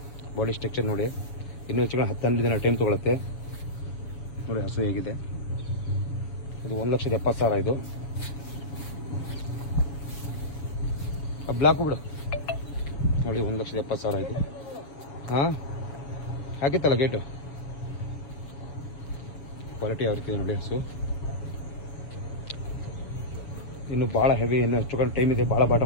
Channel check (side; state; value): right; late; 7.1 ms